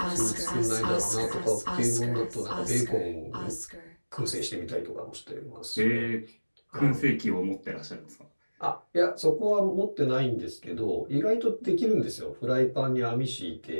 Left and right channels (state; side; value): inverted; both; correlation -1.00